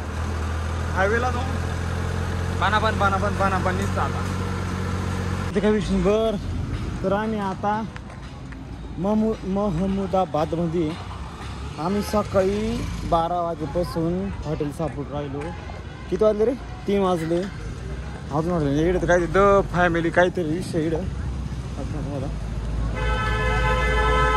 हायवेला जाऊन पानापण निघतं आता ते काय विषय. बर तर आम्ही आता महमुदाबादमध्ये आम्ही सकाळी 12 वाजेपासून हॉटेल सापडून राहिलो. किती वाजले रे? 3 वाजले. अजून वाटलं इकडे तर काय द फॅमिली काहीतरी विषय इकडं तुम्हाला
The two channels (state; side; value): identical; both; correlation 1.00